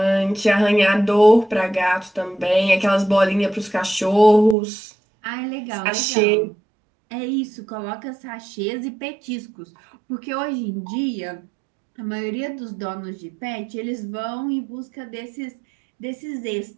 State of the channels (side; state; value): left; drops out; at 4.5 s